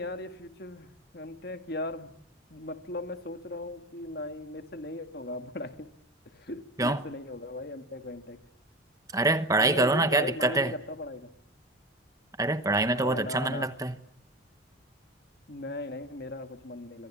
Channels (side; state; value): both; normal; correlation 0.25